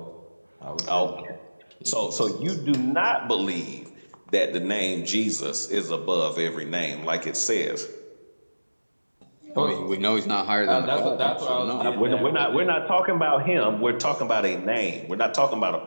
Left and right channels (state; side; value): inverted; both; correlation -1.00